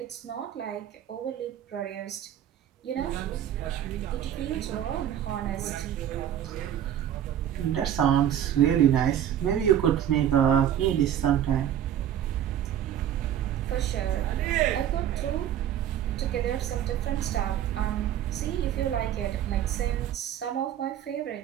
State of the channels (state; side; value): quieter; left; 10.5 dB